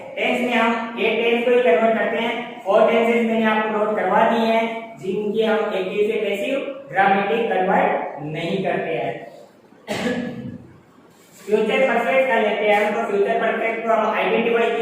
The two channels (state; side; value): identical; both; correlation 1.00